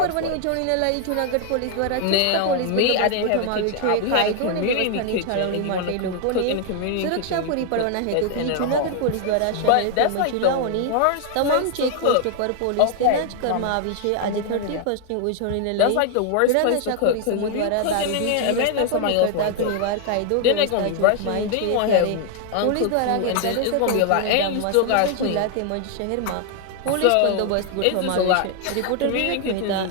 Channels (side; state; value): both; different; correlation 0.00